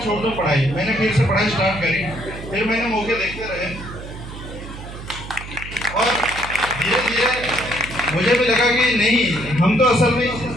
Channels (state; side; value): noise; right; hum, 12 dB below the sound